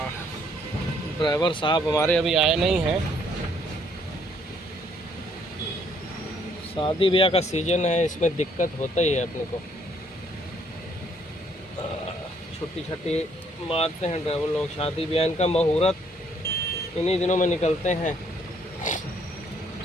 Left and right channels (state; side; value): normal; both; correlation 0.66